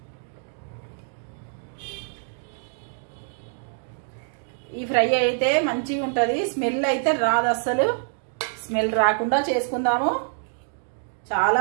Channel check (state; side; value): silent; left; digital silence